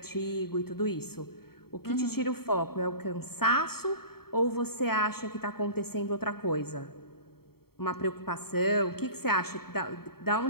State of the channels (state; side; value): late; right; 0.95 ms